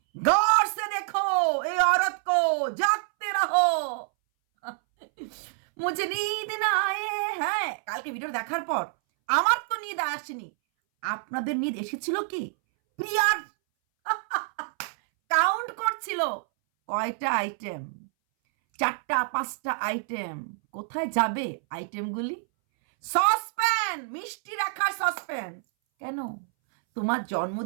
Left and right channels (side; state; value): left; silent; 60 dB below the other